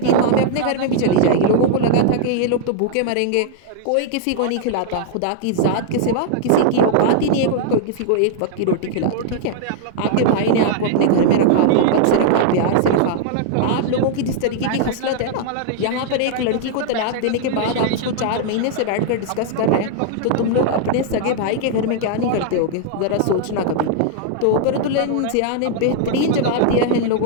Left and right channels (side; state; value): both; different; correlation -0.01